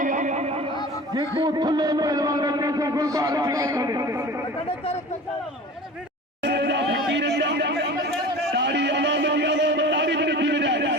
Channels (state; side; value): normal; both; correlation 0.37